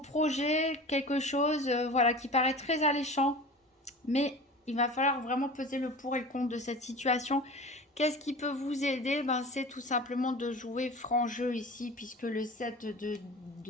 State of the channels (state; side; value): normal; both; correlation 0.36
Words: quelque chose voilà, qui paraît très alléchant. Mais il va falloir vraiment peser le pour et le contre de cette situation. Qu'est-ce qui peut vous aider? C'est tout simplement de jouer franc jeu ici, puisque le 7